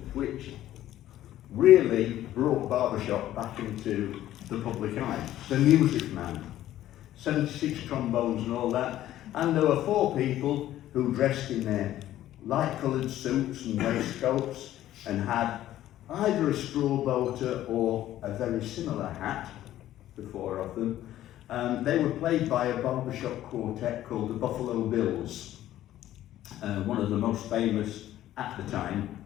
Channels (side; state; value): right; quieter; 13.3 dB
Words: which really brought barbershop back into the public eye. The Music Man, 76 trombones and all that. And there were 4 people who dressed in their light-coloured suits and waistcoats and had either a straw boater or a very similar hat, the 4 of them. They were played by a barbershop quartet called the Buffalo Bills, one of the most famous at the time.